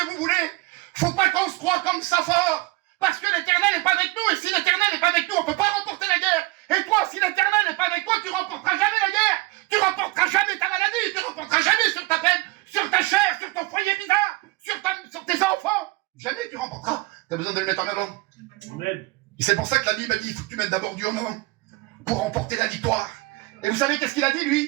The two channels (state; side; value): quieter; left; 22.0 dB